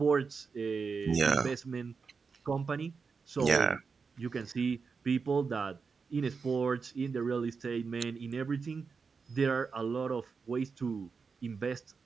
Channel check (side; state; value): left; quieter; 5.2 dB